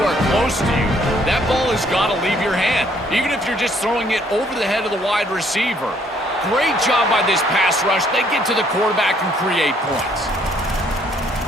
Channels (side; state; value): both; normal; correlation 0.65